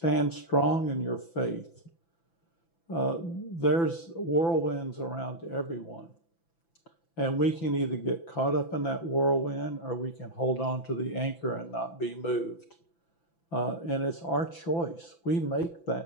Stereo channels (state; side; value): late; right; 5.9 ms